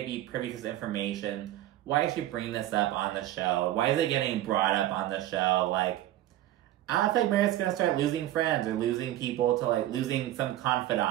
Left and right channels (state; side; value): quieter; left; 14.1 dB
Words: be privy to this information. Why is she bringing this up on the show? Why is it getting brought up on the show? Like, I don't think Meredith's gonna start losing friends or losing people to, like, losing some